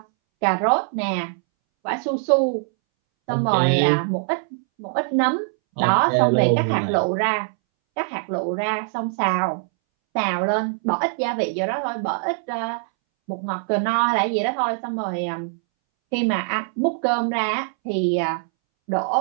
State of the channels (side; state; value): left; silent; 63 dB below the other